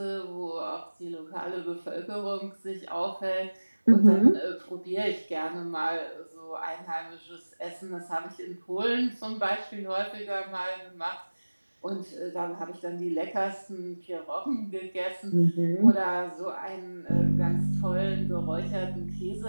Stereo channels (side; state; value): both; inverted; correlation -1.00